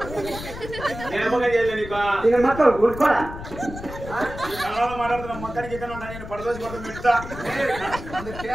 మాట్లాడుతున్నా మొత్తానికి ఇక్కడ ఉంటా నేను పడదోసి కొత్త పెడతా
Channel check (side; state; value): left; noise; rumble, 11 dB below the sound